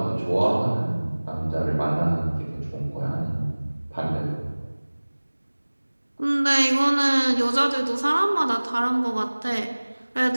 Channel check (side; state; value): both; inverted; correlation -1.00